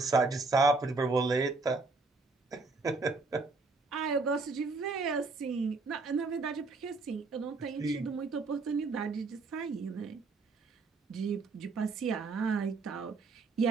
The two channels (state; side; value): quieter; left; 3.8 dB